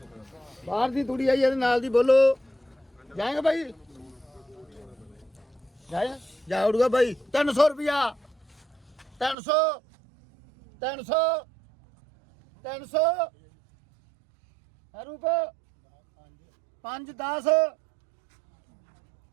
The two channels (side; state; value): left; drops out; at 9.3 s